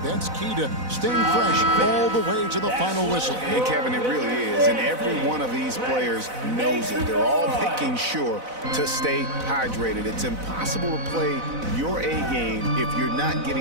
That's key to staying fresh all the way to the final whistle. And Kevin, it really is. And every one of these players knows it. They're all making sure to stay hydrated. It's impossible to play your A game if you're not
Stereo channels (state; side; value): late; left; 4.0 ms